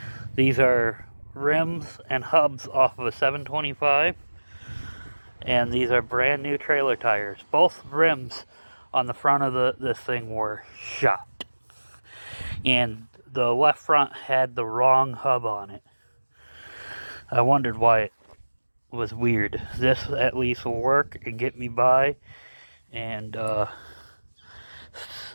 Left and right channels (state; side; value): inverted; both; correlation -1.00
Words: These are rims and hubs off of a 725, and these are brand new trailer tires. Both rims on the front of this thing were shot, and the left front had the wrong hub on it. I wondered why it was weird. This at least will work and get me by, and